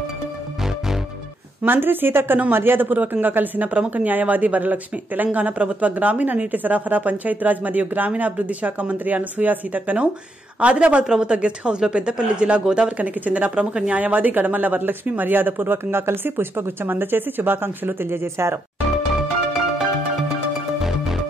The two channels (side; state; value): both; normal; correlation 0.79